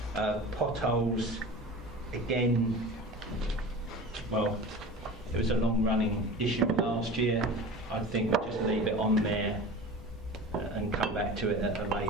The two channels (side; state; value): right; noise; hum, 21 dB below the sound